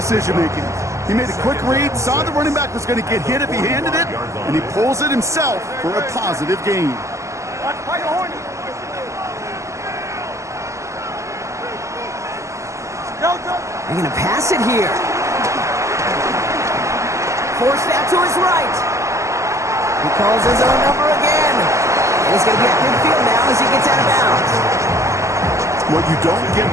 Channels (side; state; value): left; late; 0.15 ms